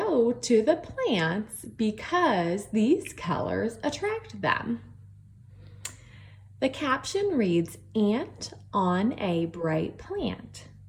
to the plants because these colors attract them. The caption reads, "Ant on a bright plant."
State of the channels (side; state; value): both; identical; correlation 1.00